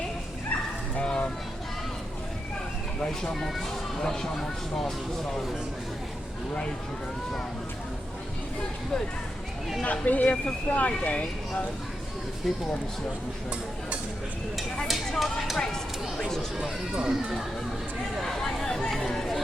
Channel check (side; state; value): both; normal; correlation 0.86